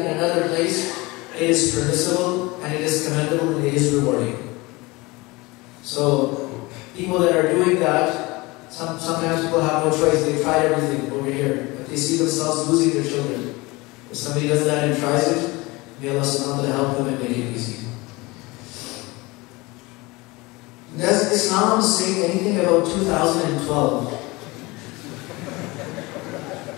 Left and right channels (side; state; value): right; quieter; 23.3 dB